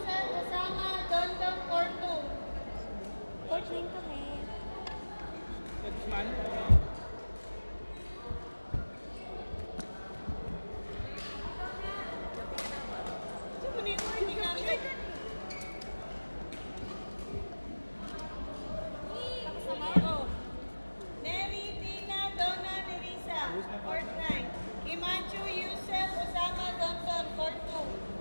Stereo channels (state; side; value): inverted; both; correlation -1.00